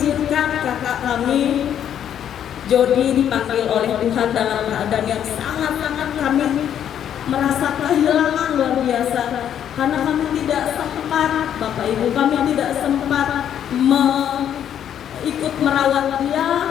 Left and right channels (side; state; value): right; quieter; 9.7 dB